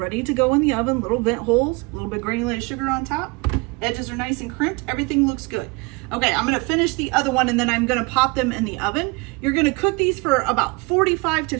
to go in the oven. Little vent holes, a little bit granulated sugar on top. Edges are nice and crimped. Everything looks good. Okay, I'm gonna finish the other one and then I'm gonna pop them in the oven. You're gonna cook these for about 45 to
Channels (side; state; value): left; quieter; 27.6 dB